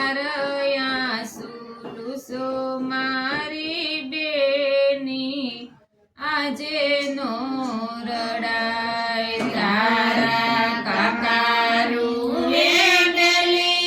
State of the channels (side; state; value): both; identical; correlation 1.00